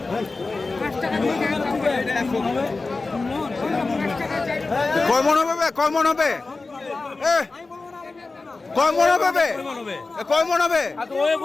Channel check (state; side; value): quieter; right; 3.7 dB